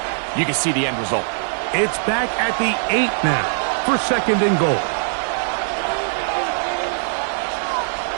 you can see the end result. It's back at the 8 now for 2nd and goal.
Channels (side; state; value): left; silent; 58 dB below the other